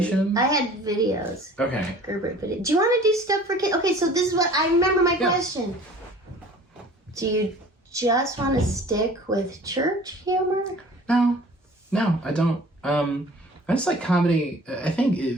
I had videos. Okay. Gerbert video. Do you want to do stuff for kids? Okay, so this is what I remember my question. Do you just want to stick with church humor? No, I don't. I just like comedy. I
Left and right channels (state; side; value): normal; both; correlation 0.48